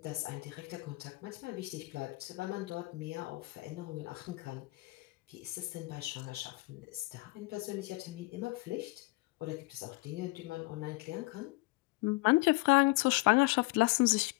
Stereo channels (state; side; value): quieter; right; 23.5 dB